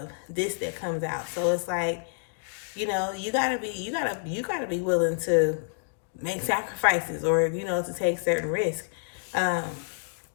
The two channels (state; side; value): silent; right; digital silence